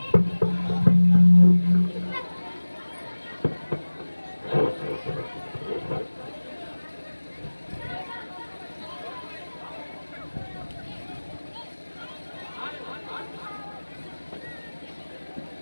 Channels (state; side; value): inverted; both; correlation -1.00